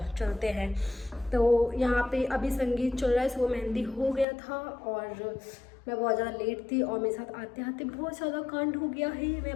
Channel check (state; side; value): drops out; right; at 4.2 s